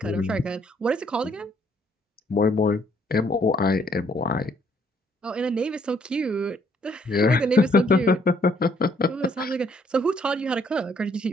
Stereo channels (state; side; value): normal; both; correlation 0.67